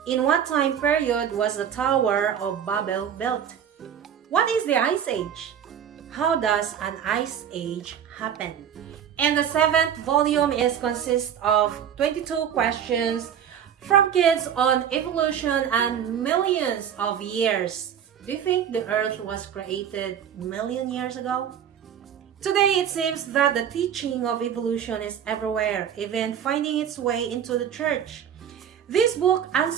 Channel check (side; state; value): left; quieter; 8.8 dB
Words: In what time period was the Tower of Babel built? What is the Ice Age? How does an Ice Age happen? And the 7th volume consists of 22 questions from kids on evolution and millions of years. Do you think the Earth was created million years ago? Today, it seems that the teaching of evolution is everywhere, even finding its way into the church. This book